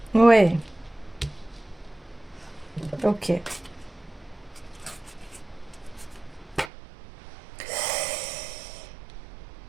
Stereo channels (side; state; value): left; drops out; at 6.7 s